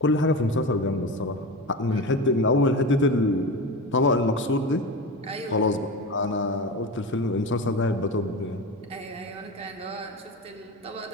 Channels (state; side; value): normal; both; correlation 0.25